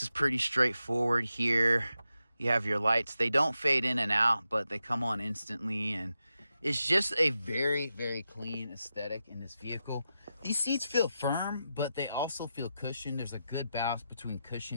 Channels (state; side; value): inverted; both; correlation -0.88